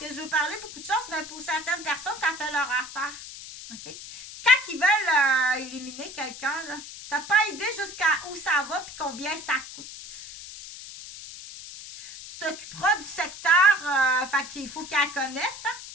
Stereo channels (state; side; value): noise; left; hiss, 13 dB below the sound